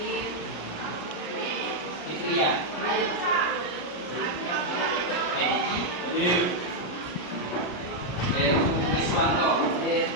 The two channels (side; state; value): right; late; 33 ms